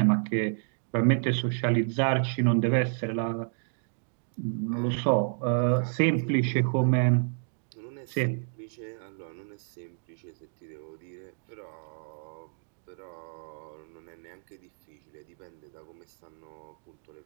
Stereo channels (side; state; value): left; silent; digital silence